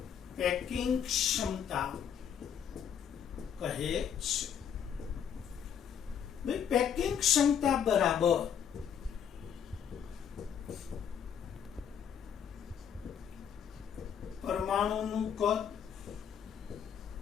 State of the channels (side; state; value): right; quieter; 8.3 dB